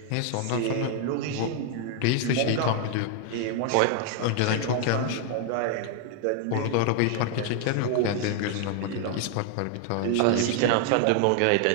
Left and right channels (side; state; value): both; different; correlation 0.00